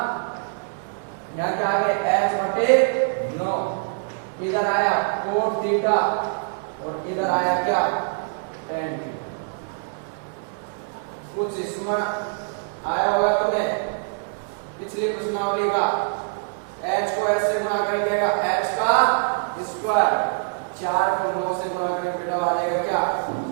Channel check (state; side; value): silent; left; digital silence